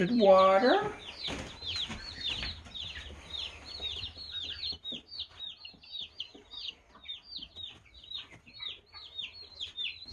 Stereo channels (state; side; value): identical; both; correlation 1.00